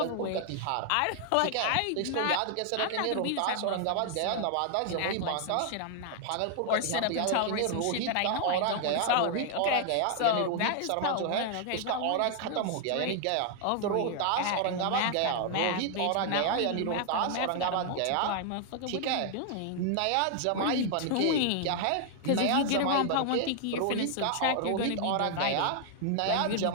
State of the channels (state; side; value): different; both; correlation 0.00